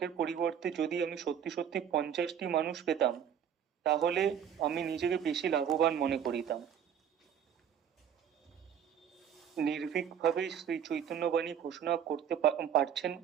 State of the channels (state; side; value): quieter; left; 8.6 dB